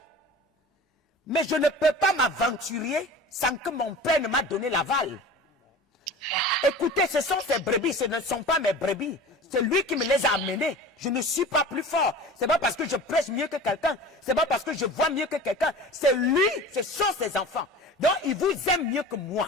Mais je ne peux pas m'aventurer sans que mon père ne m'a donné l'aval. Écoutez, ce sont ses brebis, ce ne sont pas mes brebis. C'est lui qui me les a amenés. Je ne suis pas plus fort. C'est pas parce que je prêche mieux que quelqu'un. C'est pas parce que je vois mieux que quelqu'un. C'est lui, ce sont ses enfants. Donc, il vous aime mieux que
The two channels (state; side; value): normal; both; correlation 0.37